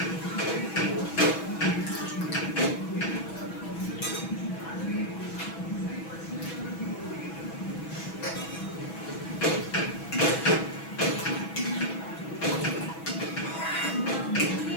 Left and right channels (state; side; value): late; right; 6.1 ms